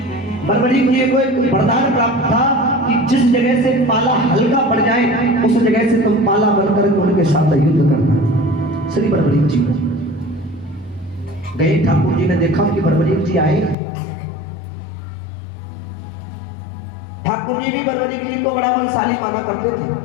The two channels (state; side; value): drops out; right; at 13.8 s